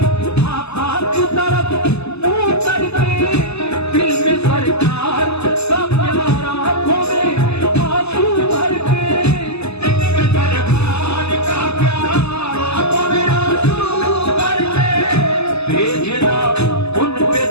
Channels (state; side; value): late; right; 0.79 ms